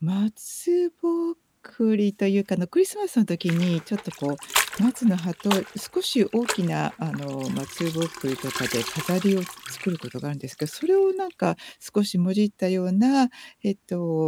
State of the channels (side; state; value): both; identical; correlation 1.00